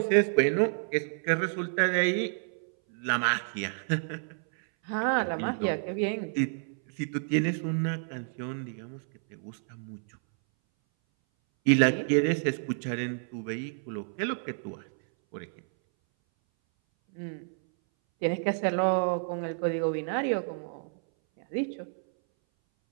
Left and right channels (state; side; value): silent; left; 58 dB below the other